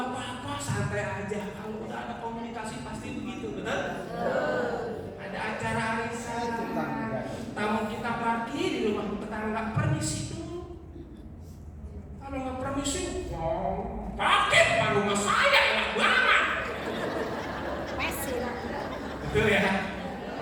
apa-apa, santai aja. Kalau udah ada komunikasi pasti begitu, betul? Ada acara arisan, tamu kita pergi di rumah tetangga, permisi dulu. Kalau nggak permisi, pakai depan rumah saya enak banget. Betul ya?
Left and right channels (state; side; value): identical; both; correlation 1.00